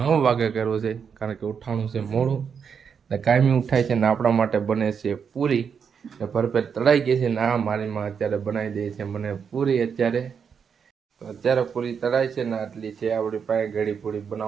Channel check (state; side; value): quieter; left; 6.7 dB